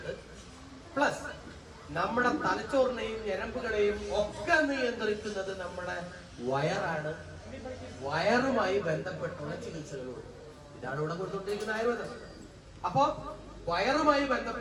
പ്ലസ് നമ്മുടെ തലച്ചോറിനെയും ഞരമ്പുകളെയും ഒക്കെ നിയന്ത്രിക്കുന്നത് നമ്മുടെ വയറാണ്. വയറുമായി ബന്ധപ്പെട്ടുള്ള ചികിത്സകളുണ്ട്. ഇതാണ് ഇവിടെ കൊണ്ടുകൊണ്ടിരിക്കുന്ന ആയുർവേദം. അപ്പോ വയറുമായി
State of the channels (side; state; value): both; identical; correlation 1.00